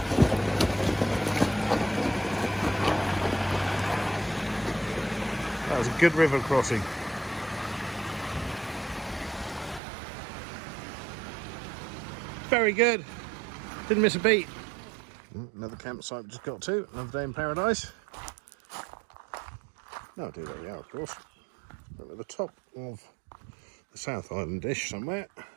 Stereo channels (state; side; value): drops out; left; at 9.8 s